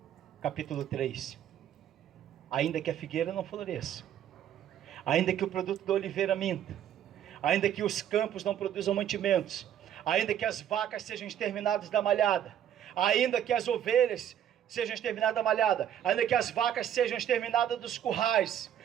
capítulo 3. Ainda que a figueira não floresça, ainda que o produto da oliveira minta, ainda que os campos não produzam mantimentos, ainda que as vacas sejam exterminadas da malhada, ainda que as ovelhas sejam exterminadas da malhada, ainda que as vacas sejam exterminadas dos currais,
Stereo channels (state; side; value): quieter; left; 10.3 dB